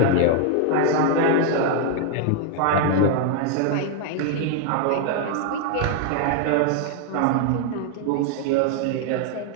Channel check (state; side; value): different; both; correlation 0.00